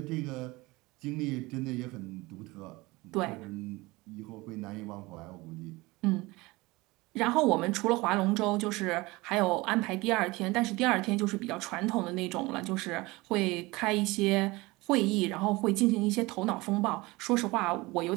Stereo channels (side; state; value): left; quieter; 22.2 dB